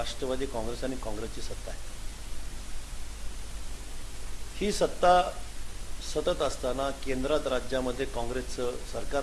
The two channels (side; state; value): both; identical; correlation 1.00